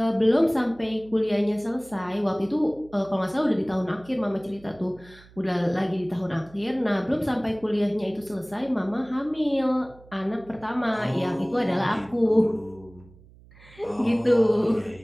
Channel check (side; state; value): right; noise; hum, 24 dB below the sound